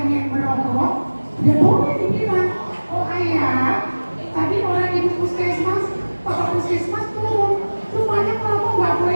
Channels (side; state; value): both; inverted; correlation -1.00